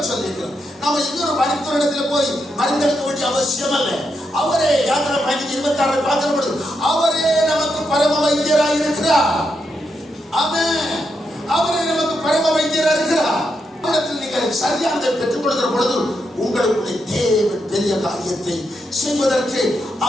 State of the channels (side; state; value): both; normal; correlation 0.83